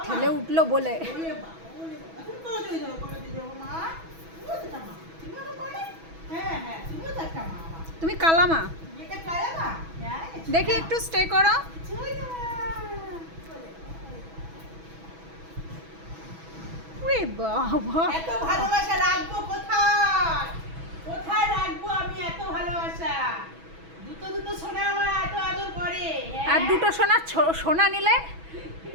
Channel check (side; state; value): left; late; 6.1 ms